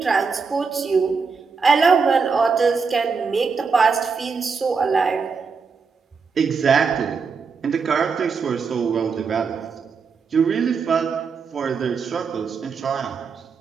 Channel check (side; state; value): left; quieter; 5.3 dB